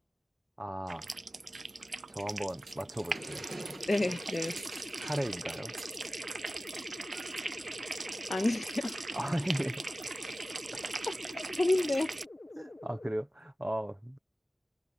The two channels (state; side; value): normal; both; correlation 0.96